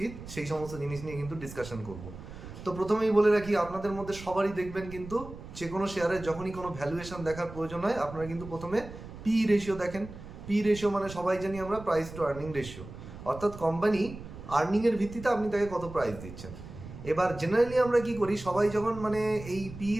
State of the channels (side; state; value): right; noise; rumble, 13 dB below the sound